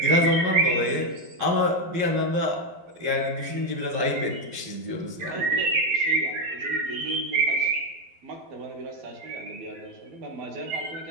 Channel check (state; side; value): late; left; 12 ms